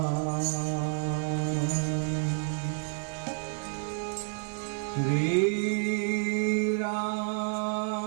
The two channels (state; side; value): silent; left; 58 dB below the other